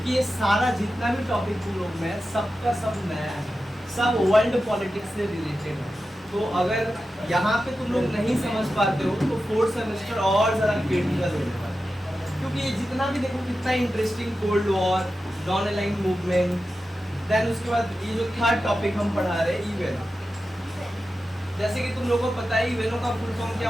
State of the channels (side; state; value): both; normal; correlation 0.92